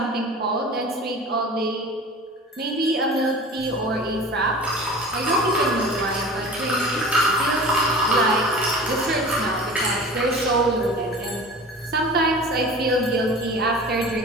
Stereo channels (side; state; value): both; normal; correlation 0.39